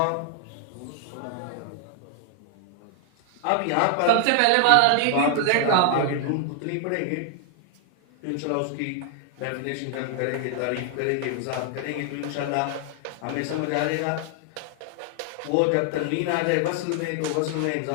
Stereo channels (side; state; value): both; different; correlation 0.00